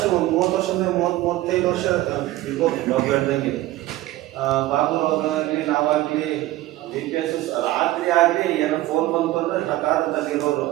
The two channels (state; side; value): quieter; left; 16.6 dB